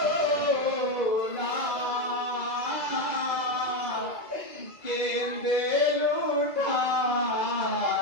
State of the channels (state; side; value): late; right; 2.0 ms